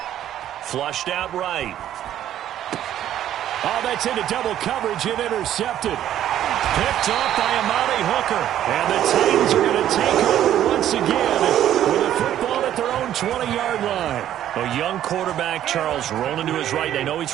Flushed out right. Oh, that's into double coverage and intercepted. Picked off by Amani Hooker. And the Titans are going to take over once again with a football at their own 20-yard line. A young quarterback, Charles, rolling to his right. I know he's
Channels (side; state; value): left; quieter; 11.5 dB